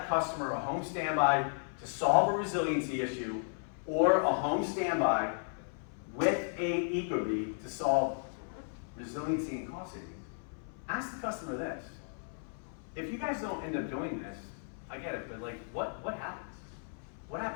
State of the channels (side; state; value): right; silent; 55 dB below the other